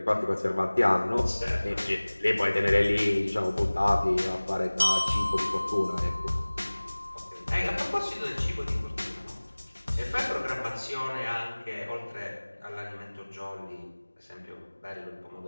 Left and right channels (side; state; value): both; inverted; correlation -1.00